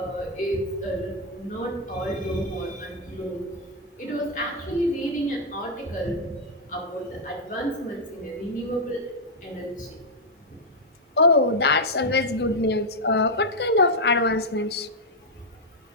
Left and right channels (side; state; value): both; normal; correlation -0.01